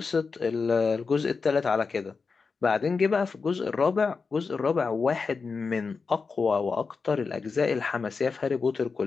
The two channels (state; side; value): quieter; right; 4.8 dB